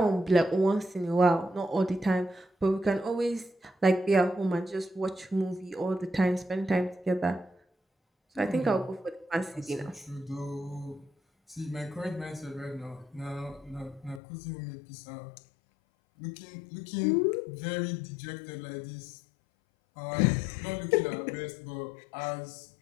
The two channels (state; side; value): drops out; right; at 14.2 s